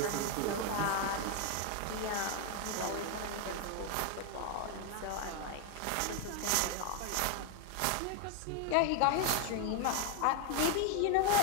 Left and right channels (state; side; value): different; both; correlation 0.01